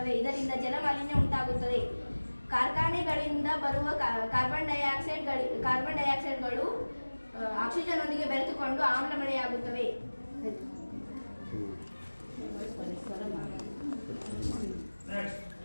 ಇದರಿಂದ ಜಲಮಾಲಿನ್ಯ ಉಂಟಾಗುತ್ತದೆ. ಕಾರ್ಖಾನೆಗಳಿಂದ ಬರುವ ಕಾರ್ಬನ್ ಡೈಆಕ್ಸೈಡ್ಗಳು ಆಕ್ಸಿಜನ್ನೊಂದಿಗೆ ಬೆರೆತುಕೊಂಡು ಆಮ್ಲ ಮಳೆಯಾಗುತ್ತವೆ.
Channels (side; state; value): both; inverted; correlation -1.00